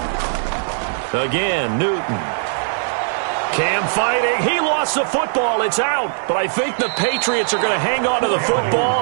Again, Newton. Cam fighting. He lost the football. It's out. But I think the Patriots are going to hang on to the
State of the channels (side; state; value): left; silent; digital silence